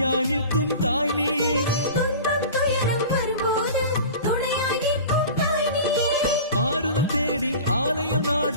நிற்கும் தாய் நீயே. துன்பம் துயரம் வரும்போது துணையாய் நிற்கும் தாய் நீயே. ஆறுதல் தேடி ஆலயம்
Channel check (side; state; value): both; inverted; correlation -0.37